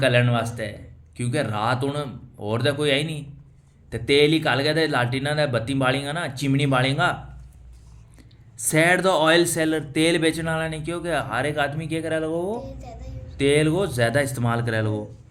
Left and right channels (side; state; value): both; identical; correlation 1.00